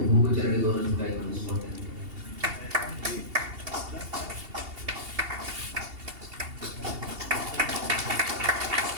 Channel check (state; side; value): late; left; 2.8 ms